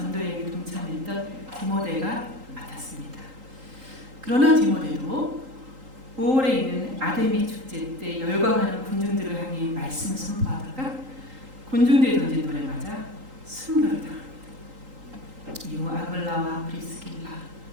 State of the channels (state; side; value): late; left; 3.8 ms